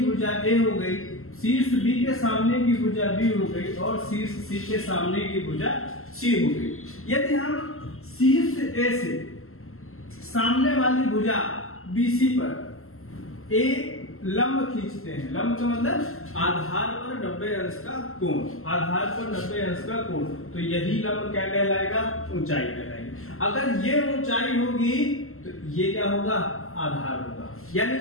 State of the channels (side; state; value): right; late; 0.62 ms